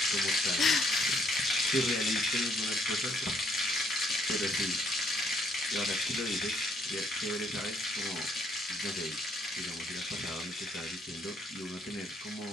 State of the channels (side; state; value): both; normal; correlation 0.69